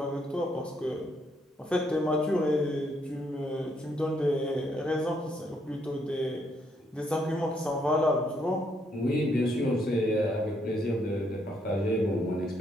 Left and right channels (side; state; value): both; normal; correlation 0.73